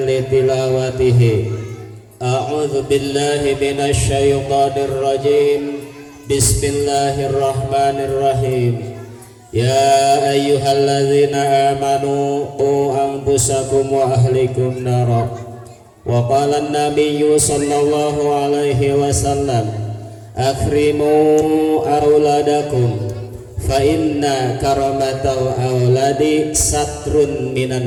li tilawatihi. A'udzu billahi minasy syaithanir rajim. Bismillahirrahmanirrahim. Ya ayyuhalladzina amanu qu anfusakum wa ahlikum nara. Wa qala an-nabiyyu sallallahu alaihi wasallam, akrimu auladakum fa inna karamatal auladi satrun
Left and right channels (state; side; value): identical; both; correlation 1.00